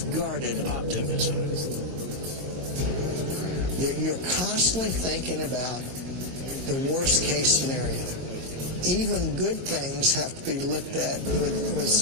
guarded optimism. You're constantly thinking about the worst case scenario. Even good things have to be looked at with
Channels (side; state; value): left; late; 22 ms